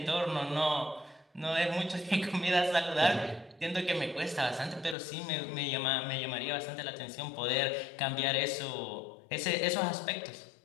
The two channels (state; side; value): drops out; right; at 5.0 s